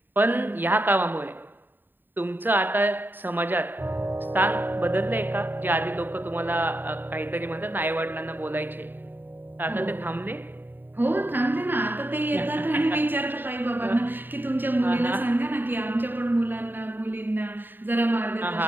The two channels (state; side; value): late; left; 0.093 ms